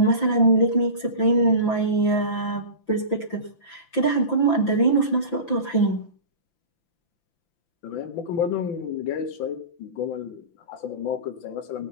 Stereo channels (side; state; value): right; late; 5.9 ms